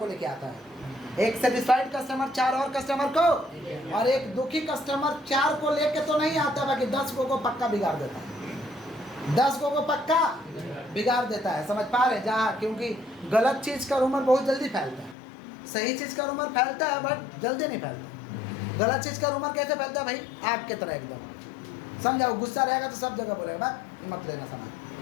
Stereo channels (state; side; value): drops out; right; at 15.2 s